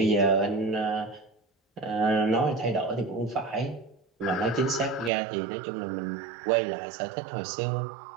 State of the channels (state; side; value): drops out; left; at 5.1 s